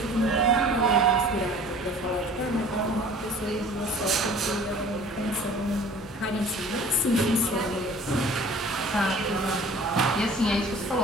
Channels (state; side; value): normal; both; correlation 0.47